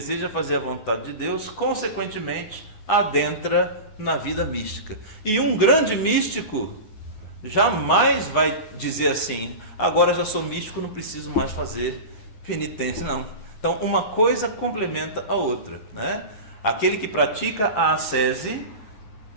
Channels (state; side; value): late; right; 9.4 ms